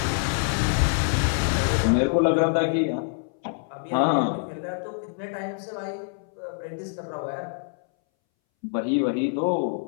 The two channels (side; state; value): right; silent; 61 dB below the other